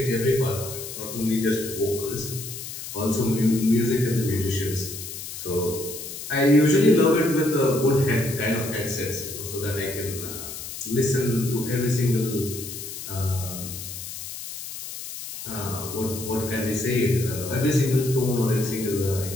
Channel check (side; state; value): left; noise; hiss, 9 dB below the sound